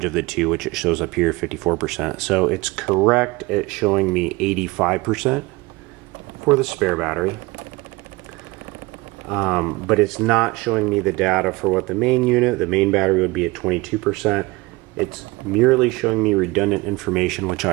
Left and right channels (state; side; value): quieter; left; 22.5 dB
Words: of the two, which it shows up here, 54%. So it's correct at showing me 85% for the spare battery. But it's not showing me the data for what the main unit, the main battery would be at 22%. It's merely showing me redundant information, which